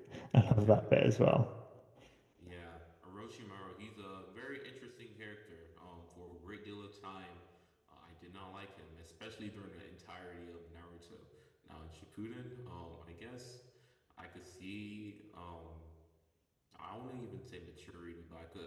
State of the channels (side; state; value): both; identical; correlation 1.00